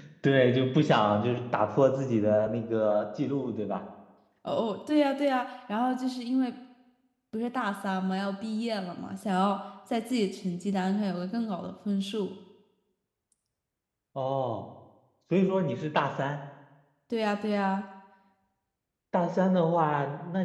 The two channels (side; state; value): both; identical; correlation 1.00